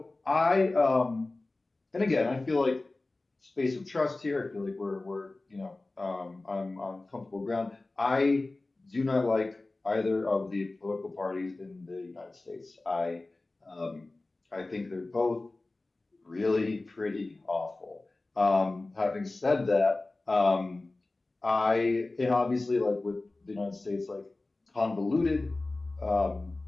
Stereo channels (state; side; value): quieter; right; 3.1 dB